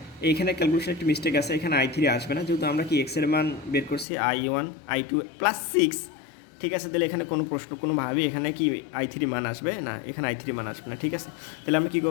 এইখানে ক্যালকুলেশন একটু মিস্টেক আছে, এখানে I3 আসবে না, যেহেতু আমরা কি x এর মান বের করছি I1 I2 প্লাস 6। ঠিক আছে, তাহলে এখানে কোনোভাবেই এখানে কি I3 মান আসবে না, এখানে I3 মান আসবে না। ঠিক আছে, তাহলে আমরা কী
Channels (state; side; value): drops out; right; at 4.0 s